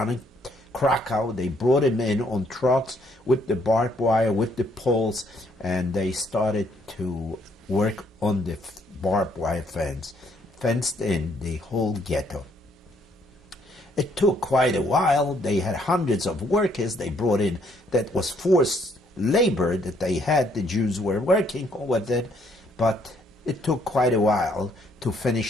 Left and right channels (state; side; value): normal; both; correlation 0.68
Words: Krakow. They brought them in on trucks with the barbed wire, with the poles, and they started to work on the barbed wire fence, fenced in the whole ghetto. It took quite a while. They had hundreds of workers they brought in that was forced labor that they had. The Jews were working with it, but it took quite a while to